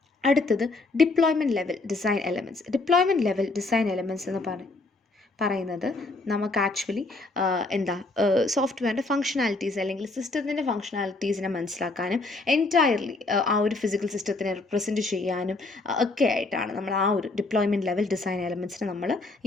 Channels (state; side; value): quieter; right; 3.3 dB